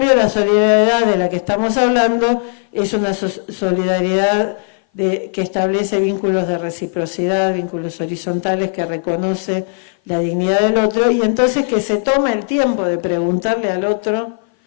la solidaridad de la que estamos hablando es una solidaridad que establece vínculos de reciprocidad, vínculos horizontales, que reconoce la dignidad del otro, y entonces que se toma el tiempo de preguntarle al otro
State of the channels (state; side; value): silent; right; 59 dB below the other